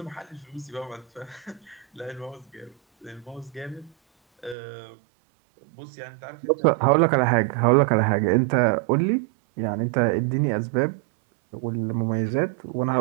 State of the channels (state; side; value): drops out; left; at 4.5 s